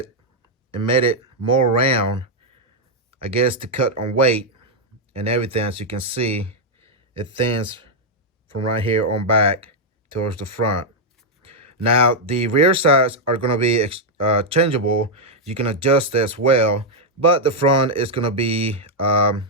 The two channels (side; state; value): both; normal; correlation -0.02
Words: and made it more round, I guess, to cut on weight and everything. As you can see, it thins from right here on back towards the front. Now, the rear sides are going to be changeable. You can adjust as well, but the front is going to be,